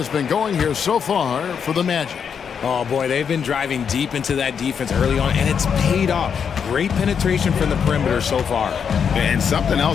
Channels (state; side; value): quieter; right; 7.1 dB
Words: been going here so far for the Magic. Oh, boy, they've been driving deep into that defense early on, and it's paid off. Great penetration from the perimeter so far. And something